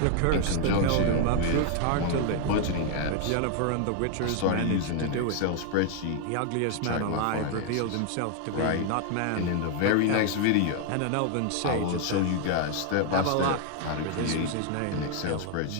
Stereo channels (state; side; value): different; both; correlation 0.00